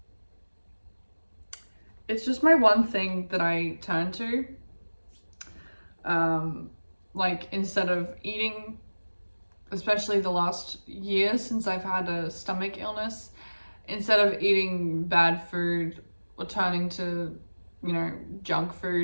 It's just my one thing that I turn to. Like instead of eating, especially the last year since I've had a stomach illness, instead of eating bad food or turning to, you know, junk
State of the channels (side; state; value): both; inverted; correlation -1.00